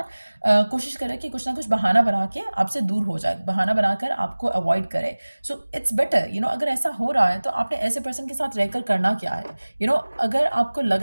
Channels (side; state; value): both; inverted; correlation -1.00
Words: कोशिश करे कि कुछ ना कुछ बहाना बना के आपसे दूर हो जाए, बहाना बनाकर आपको अवॉइड करे। सो इट्स बेटर अगर ऐसा हो रहा है तो आपने ऐसे पर्सन के साथ रहकर करना क्या है। अगर आपको लग